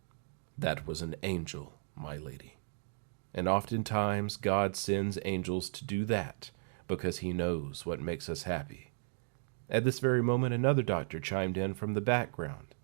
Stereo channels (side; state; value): left; silent; digital silence